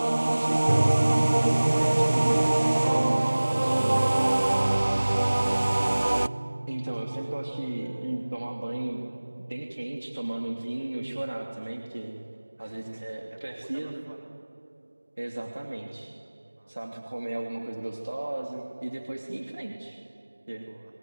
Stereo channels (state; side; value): inverted; both; correlation -1.00